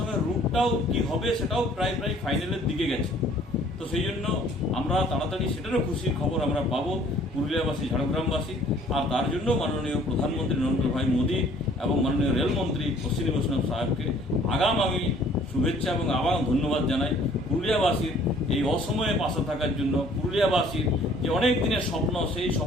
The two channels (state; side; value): normal; both; correlation 0.56